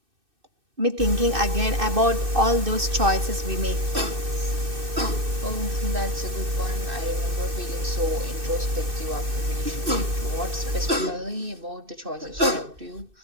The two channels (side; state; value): left; late; 2.6 ms